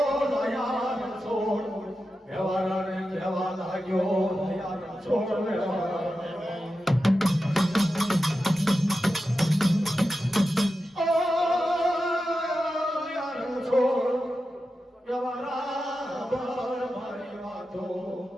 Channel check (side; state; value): both; normal; correlation 0.91